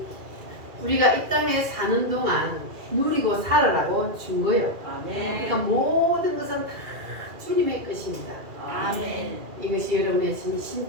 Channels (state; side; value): late; left; 2.4 ms